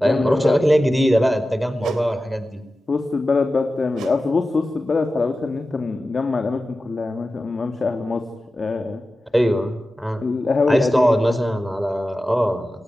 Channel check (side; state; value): both; normal; correlation 0.94